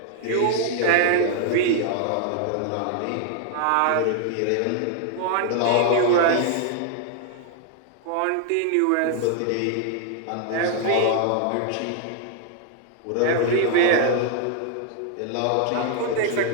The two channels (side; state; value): both; different; correlation 0.00